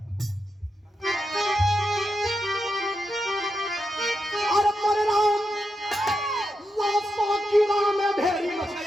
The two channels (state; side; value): normal; both; correlation 0.86